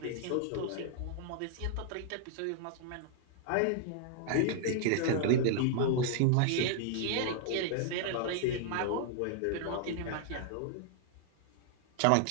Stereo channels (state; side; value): different; both; correlation -0.01